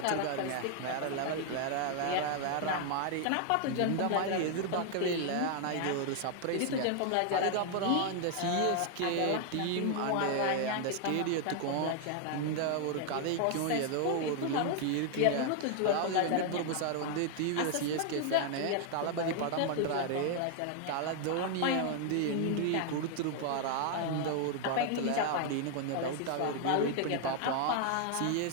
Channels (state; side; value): different; both; correlation 0.00